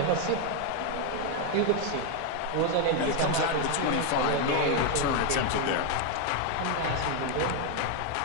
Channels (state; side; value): different; both; correlation 0.01